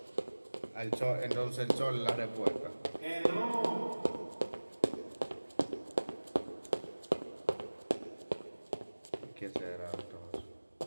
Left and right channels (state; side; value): inverted; both; correlation -1.00